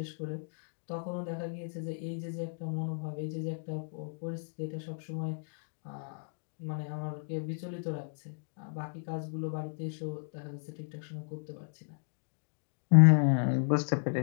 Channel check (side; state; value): right; silent; digital silence